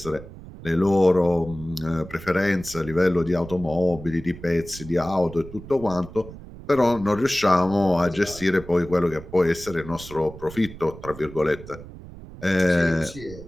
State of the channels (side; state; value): right; noise; rumble, 15 dB below the sound